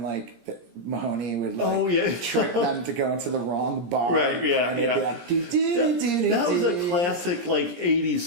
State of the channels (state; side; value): late; left; 17 ms